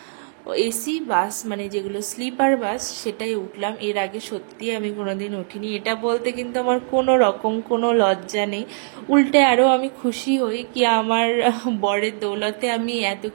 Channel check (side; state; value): left; silent; digital silence